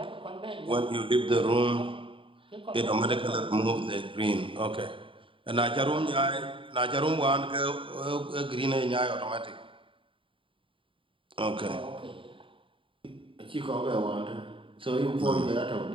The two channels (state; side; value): late; left; 0.25 ms